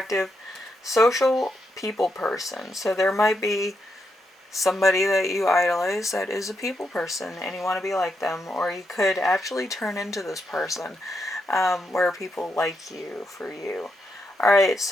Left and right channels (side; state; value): both; normal; correlation 0.82